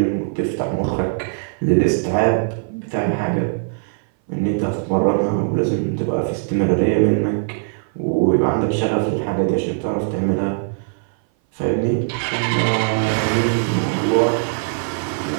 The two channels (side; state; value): left; silent; 59 dB below the other